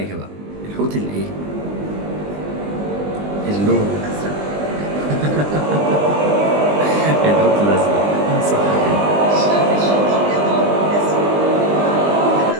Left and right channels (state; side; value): late; left; 20 ms